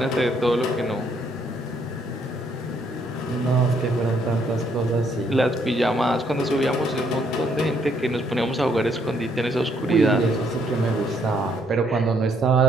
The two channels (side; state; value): both; normal; correlation 0.70